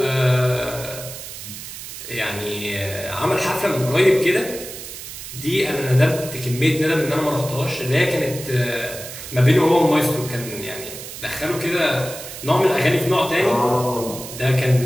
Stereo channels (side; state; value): right; noise; hiss, 11 dB below the sound